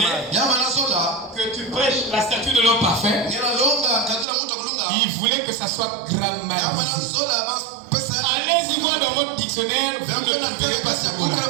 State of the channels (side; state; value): left; drops out; at 4.2 s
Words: que tu prêches la statue de l'homme parfait. Il voulait que ça soit grammarisé. Allez-y voir dans votre dictionnaire, vous ne trouverez pas ce mot-là.